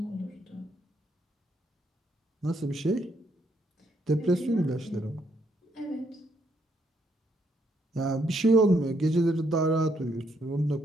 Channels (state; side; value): normal; both; correlation 0.73